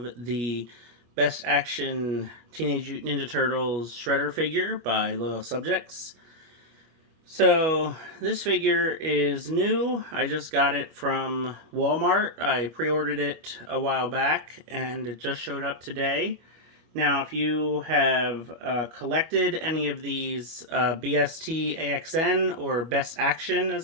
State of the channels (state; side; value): late; left; 25 ms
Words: the Best Action Teenage Mutant Ninja Turtles Shredder figure by Loyal Subjects. So this figure is new. I just got it from Walmart. I pre-ordered it a while back and it just showed up today. Now if you have collected any of these BST AXN or Best Action